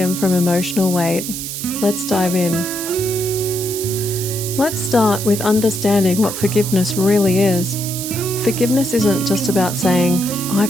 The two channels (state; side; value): noise; right; hiss, 6 dB below the sound